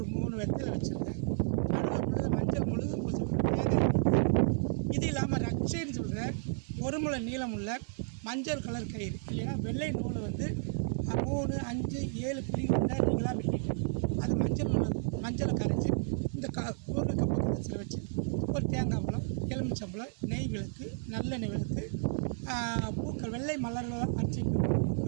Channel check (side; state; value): left; silent; 56 dB below the other